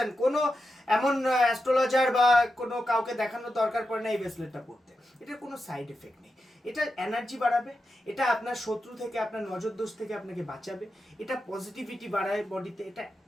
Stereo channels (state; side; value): normal; both; correlation 0.89